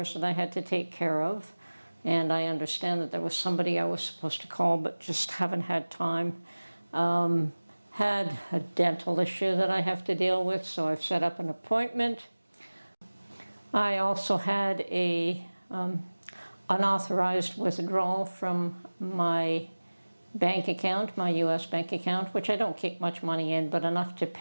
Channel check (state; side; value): inverted; both; correlation -1.00